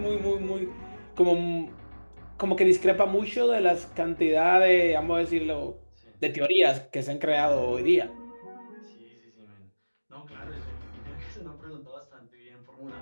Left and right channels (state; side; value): inverted; both; correlation -1.00